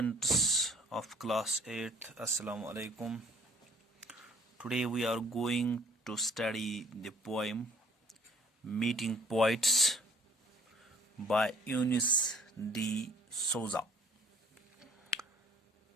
of class 8th, Assalamu alaikum. Today we are going to study the poem Meeting Poets by Eunice D. Souza.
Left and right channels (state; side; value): normal; both; correlation 0.57